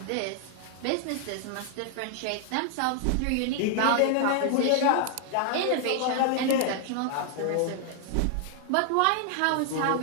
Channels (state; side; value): different; both; correlation 0.00